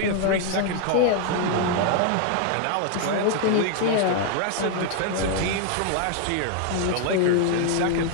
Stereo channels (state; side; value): different; both; correlation 0.00